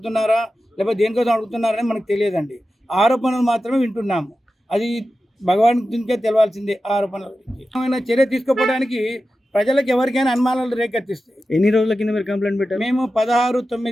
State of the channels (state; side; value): normal; both; correlation 0.93